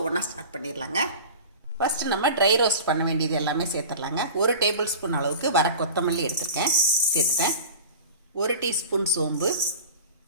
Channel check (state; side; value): inverted; both; correlation -0.36